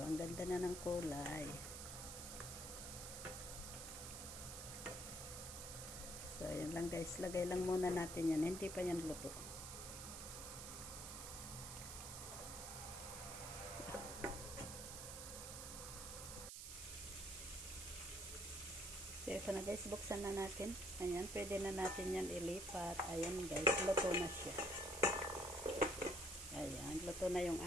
Ang ganda na ng kulay. So, ayan lang guys. Lagay lang muna natin yan. Hindi pa yan luto. So, ito na guys, buksan na natin. Ayan, pwede na natin yan ilipat. Ayan guys, luto na siya. Ayan, luto na yung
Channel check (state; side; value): noise; right; hiss, 8 dB below the sound